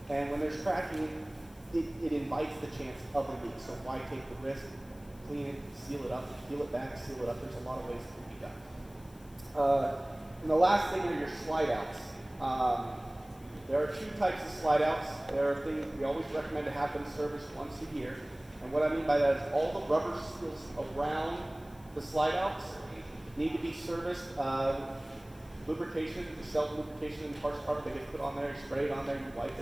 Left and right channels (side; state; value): left; noise; hiss, 26 dB below the sound